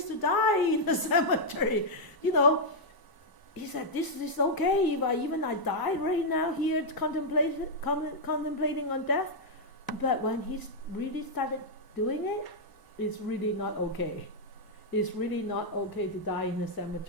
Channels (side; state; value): right; late; 1.0 ms